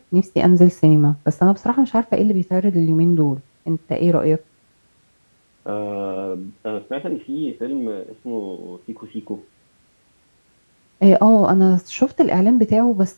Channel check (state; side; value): inverted; both; correlation -1.00